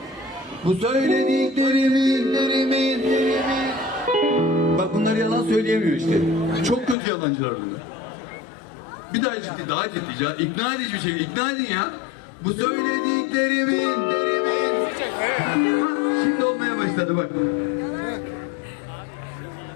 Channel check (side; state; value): right; drops out; at 7.0 s